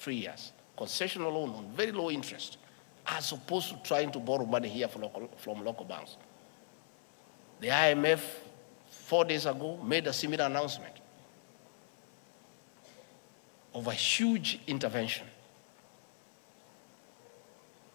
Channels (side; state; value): right; silent; 52 dB below the other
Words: years. Concessional loan on very low interest, as opposed to trying to borrow money here from local banks. The IMF, 4 days ago, made a similar announcement of a huge intervention.